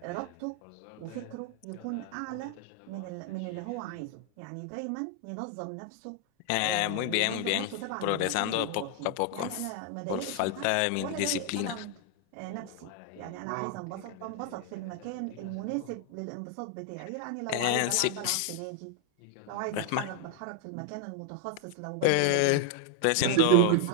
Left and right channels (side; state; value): both; different; correlation 0.01